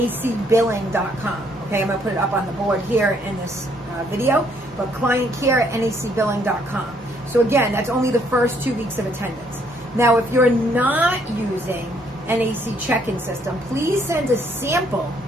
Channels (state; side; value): normal; both; correlation 0.68